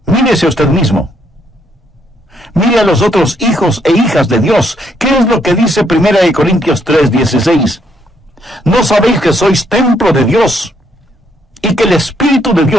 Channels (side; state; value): both; normal; correlation 0.72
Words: mírese a usted mismo. Mire a los otros hijos e hijas de Dios. ¿Qué es lo que dice 1 Corintios 3:16? ¿No sabéis que sois templo de Dios y que el Espíritu de